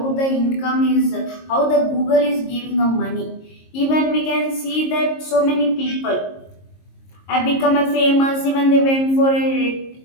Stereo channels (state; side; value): late; right; 22 ms